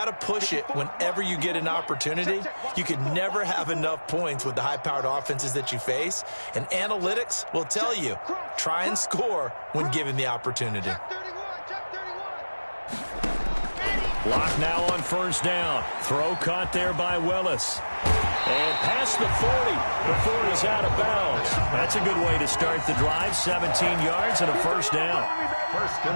to push it whenever you get an opportunity. You can never have enough points with the high-powered offenses that you face. And analytics will tell you, try and score when given the opportunity. Lock now on first down. Throw caught there by Willis. And past the 40 before he's out of bounds. That's a good way to start the drive. 17 yards and a first down.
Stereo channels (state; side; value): inverted; both; correlation -1.00